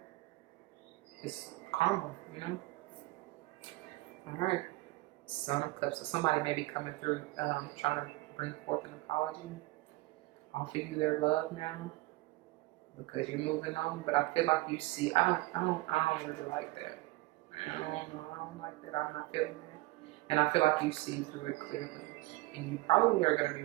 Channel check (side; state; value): left; quieter; 20.6 dB